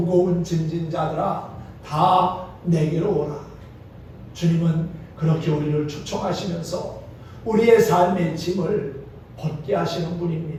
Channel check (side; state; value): both; identical; correlation 1.00